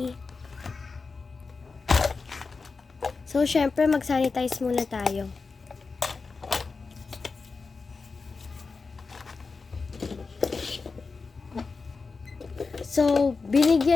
So, syempre, mag-sanitize muna tayo. So,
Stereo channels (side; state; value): right; quieter; 4.4 dB